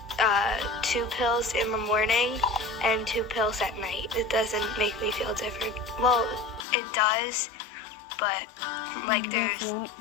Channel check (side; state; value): right; drops out; at 6.7 s